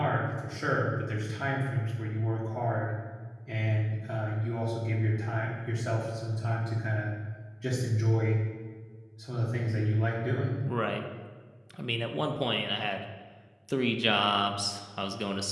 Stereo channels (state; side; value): identical; both; correlation 1.00